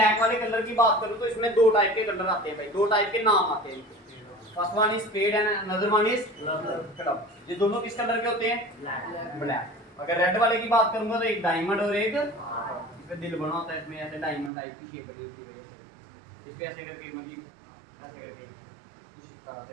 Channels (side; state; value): left; drops out; at 14.5 s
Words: वाले कलर की बात करूं तो इसमें दो टाइप के कलर आते हैं भाई, दो टाइप के नाम आते हैं। First one is fed and another one is club. ये दोनों किस कलर के होते हैं? ब्लैक। अगर रेड वाले की बात करूंगा तो एक डायमंड और एक इसमें दिल बना होता है, इसमें ऐसे डायमंड टाइप की शेप बनी होती है वजह से, इस पे ऐसे करके मतलब ऐसे करके कुछ इस तरह